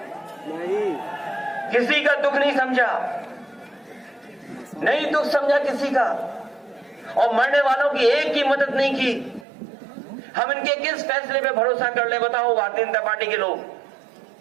किसी का दुख नहीं समझा, नहीं दुख समझा किसी का। और मरने वालों की एक की मदद नहीं की। हम इनके किस फैसले पे भरोसा कर ले? बताओ भारतीय जनता पार्टी के लोग।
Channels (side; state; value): left; drops out; at 9.5 s